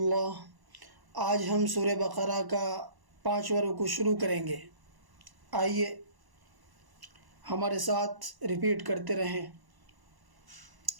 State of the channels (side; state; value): left; late; 1.0 ms